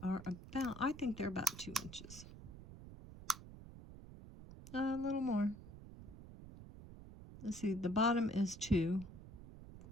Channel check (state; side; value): noise; right; rumble, 15 dB below the sound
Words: are about, I think they're about 2 inches. A little more. Let's see, the bottom is 2.